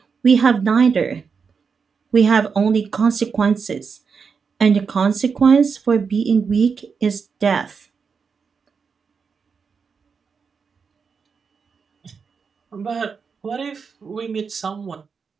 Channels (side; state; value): left; quieter; 5.7 dB